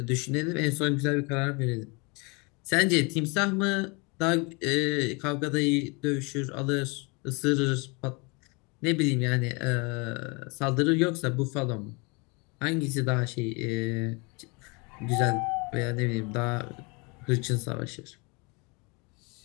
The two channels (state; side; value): quieter; right; 30.0 dB